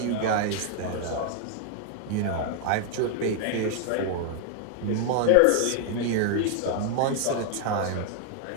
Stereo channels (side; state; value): both; different; correlation 0.00